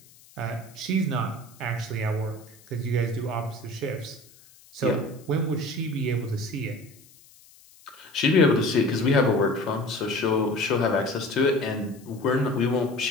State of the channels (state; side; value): noise; left; hiss, 25 dB below the sound